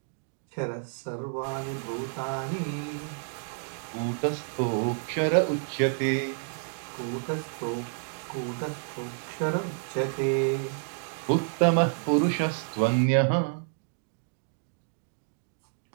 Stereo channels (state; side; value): silent; left; digital silence